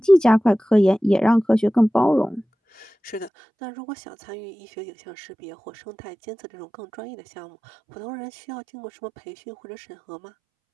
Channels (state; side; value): drops out; left; at 3.3 s